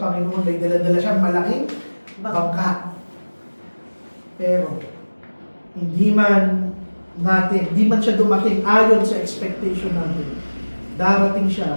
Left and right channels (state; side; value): inverted; both; correlation -1.00